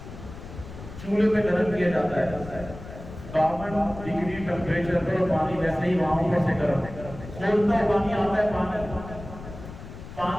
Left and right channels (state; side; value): noise; left; rumble, 13 dB below the sound